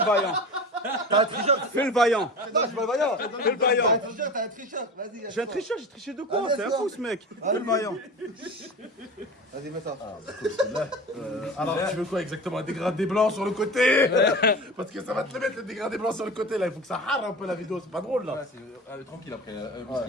vaillant. T'as un tricheur. Fais le vaillant. Non, je suis pas le vaillant. Fais le vaillant. T'as un tricheur. Vas-y. J'ai un tricheur, j'ai triché de quoi? Ah, C'est un d'accord. fou ce mec. Fais le vaillant. Vas-y, mets ça. Alors, tu veux quoi exactement? Un dégradé blanc sur le côté. Parce que ça va te le mettre le dégradé blanc sur le côté là. Il faut que ça rare un peu la vidéo. C'est pas drôle là. Tranquille après,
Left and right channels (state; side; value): normal; both; correlation 0.32